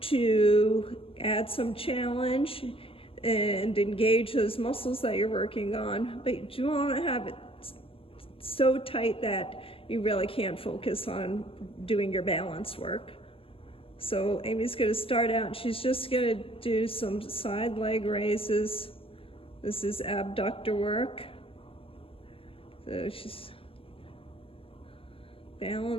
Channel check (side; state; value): right; late; 0.26 ms